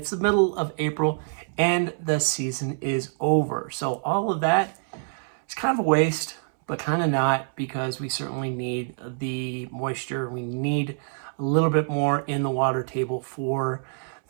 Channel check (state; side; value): silent; left; 61 dB below the other